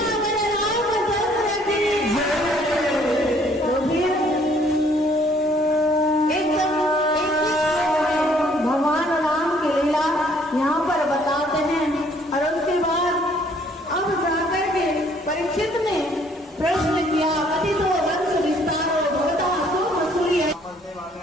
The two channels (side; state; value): both; normal; correlation 0.62